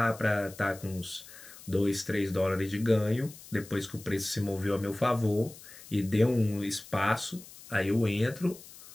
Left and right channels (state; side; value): noise; left; hiss, 18 dB below the sound